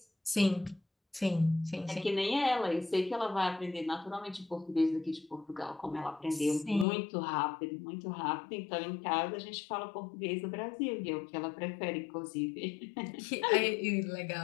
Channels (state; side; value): drops out; right; at 6.9 s